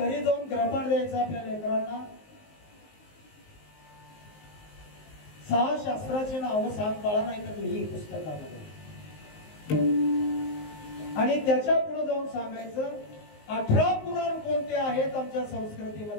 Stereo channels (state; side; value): late; right; 19 ms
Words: जाऊन ग्रहपाठ द्यायचं आपल्या लेकरांना. 6 शास्त्राची नावं सांग बाळा, नाही तर लिही पुस्तकामध्ये. आणि त्याच्या पुढे जाऊन सांगायचं 18 पुराण कोणते आहेत आमच्या